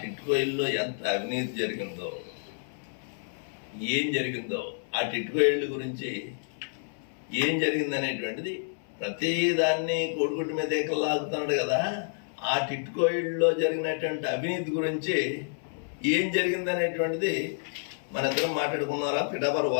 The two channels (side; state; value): right; silent; 56 dB below the other